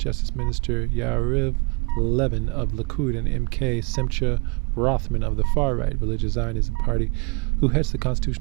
Minister Yariv Levin of Likud and MK Simcha Rothman of the far-right religious Zionism party, who heads the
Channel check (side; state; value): left; quieter; 29.9 dB